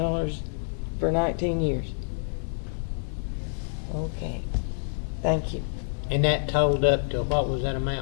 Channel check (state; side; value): silent; right; digital silence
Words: for 19 years. Okay. Thank you. And that totaled up to, what was that